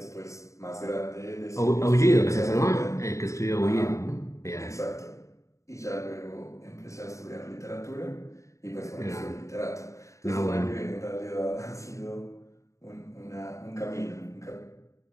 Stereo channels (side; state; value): right; late; 0.15 ms